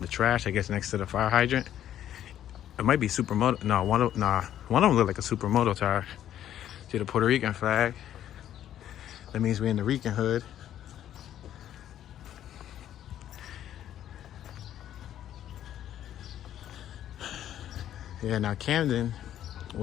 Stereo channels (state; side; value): quieter; right; 11.2 dB